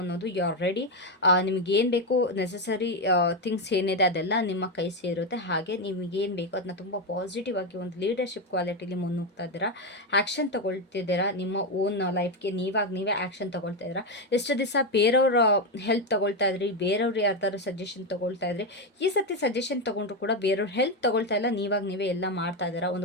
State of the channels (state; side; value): normal; both; correlation 0.08